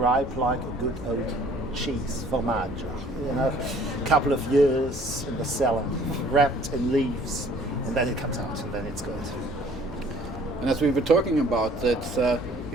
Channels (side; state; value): both; normal; correlation 0.55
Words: like a good old cheese, formaggio. You know, a couple of years in the cellar, wrapped in leaves, and then it comes out, and then it's good. And as we were talking about,